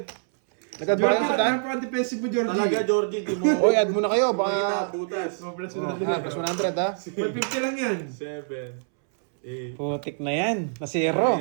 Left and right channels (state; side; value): silent; left; 62 dB below the other